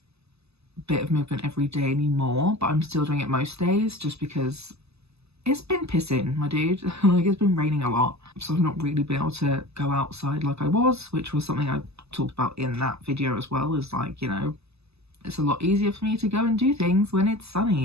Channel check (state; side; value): late; left; 0.79 ms